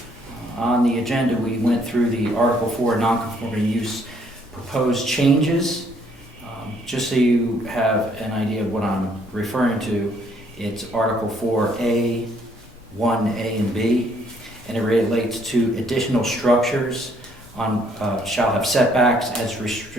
On the agenda, we went through the Article 4 non-conforming use proposed changes. Just so you have an idea of what I'm referring to, it's Article 4A, 1A and B, and it relates to additional structures shall have setbacks as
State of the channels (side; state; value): both; normal; correlation 0.66